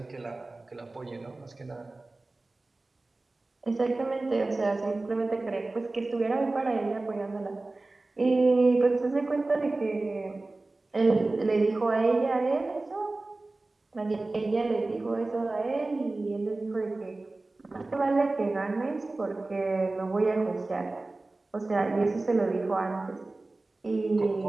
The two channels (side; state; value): left; quieter; 3.1 dB